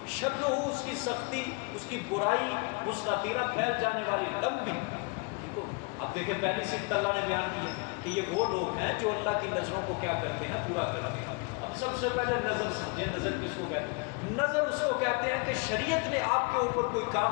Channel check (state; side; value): quieter; right; 31.0 dB